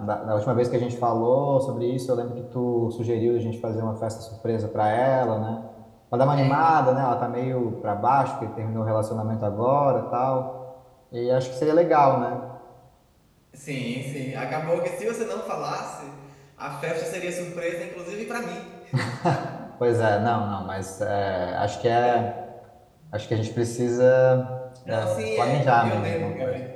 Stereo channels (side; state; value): both; identical; correlation 1.00